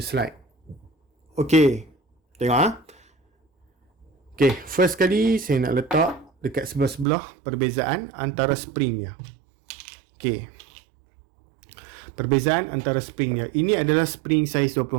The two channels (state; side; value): drops out; left; at 7.1 s